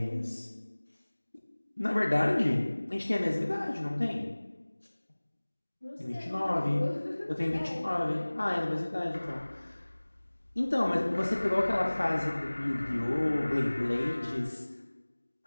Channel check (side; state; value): both; inverted; correlation -1.00